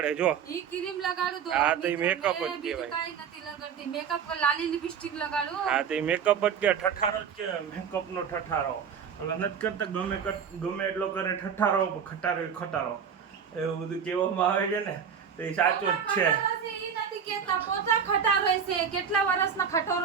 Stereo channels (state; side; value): quieter; left; 7.3 dB